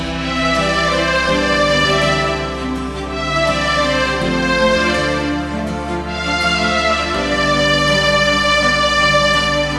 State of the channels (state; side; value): identical; both; correlation 1.00